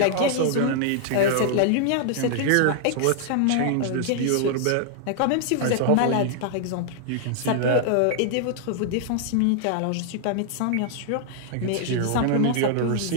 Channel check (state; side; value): different; both; correlation 0.00